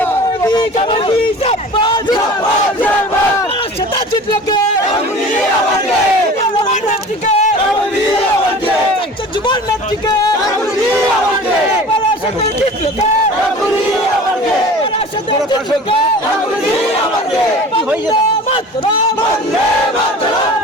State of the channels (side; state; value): both; normal; correlation 0.40